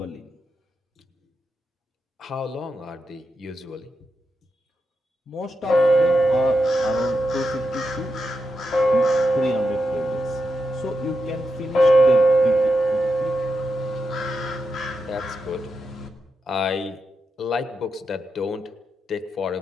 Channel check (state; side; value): normal; both; correlation 0.86